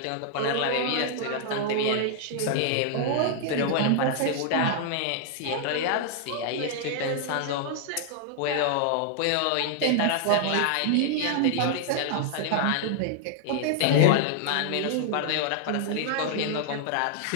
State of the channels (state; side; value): different; both; correlation -0.01